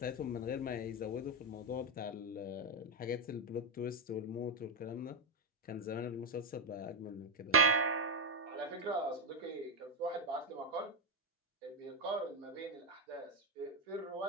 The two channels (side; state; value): both; normal; correlation 0.04